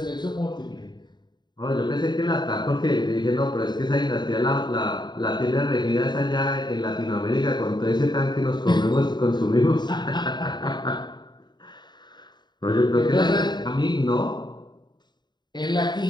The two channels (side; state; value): right; late; 0.21 ms